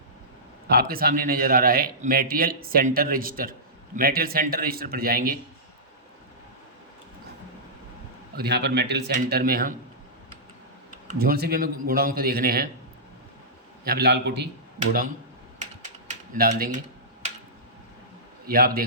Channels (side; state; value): both; normal; correlation -0.17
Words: आपके सामने नज़र आ रहा है material centre register. Material centre register पर जाएंगे और यहाँ पर मटेरियल सेंटर में हम जोन से भी हमें गोडाउन को देखने हैं, यहाँ पे लाल कोठी गोडाउन डाल देंगे। ये आप